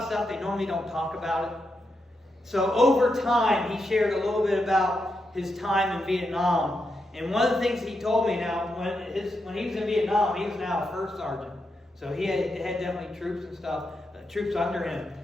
stuff, they normally don't talk about it. So over time, he shared a little bit about his time in Vietnam. And one of the things he told me now, when he was in Vietnam, he was now a first sergeant. So he had definitely troops and stuff, troops under him.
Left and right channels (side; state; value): both; normal; correlation 0.85